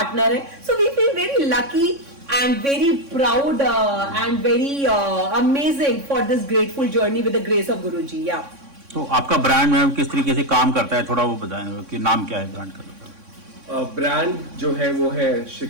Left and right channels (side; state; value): left; late; 3.6 ms